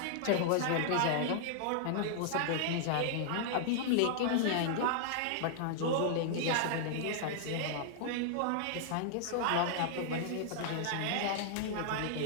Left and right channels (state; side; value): different; both; correlation -0.01